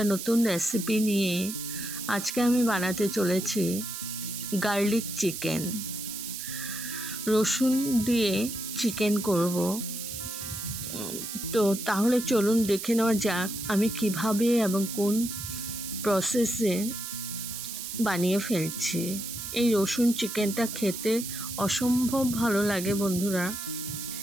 নতুন রেসিপি নিয়ে। আজকে আমি বানাতে চলেছি গার্লিক চিকেন। রসুন দিয়ে চিকেন করব। তো তাহলে চলুন দেখে নেওয়া যাক আমি কিভাবে এবং কোন প্রসেসে বানিয়ে ফেলছি। এই রসুন চিকেনটা খেতে অসম্ভব ভালো লাগে বন্ধুরা।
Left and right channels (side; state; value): right; noise; hiss, 7 dB below the sound